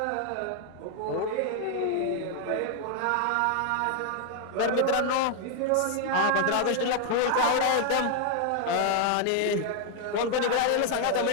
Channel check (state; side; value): different; both; correlation 0.00